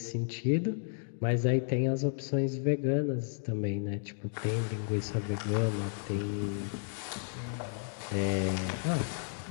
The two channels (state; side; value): silent; right; digital silence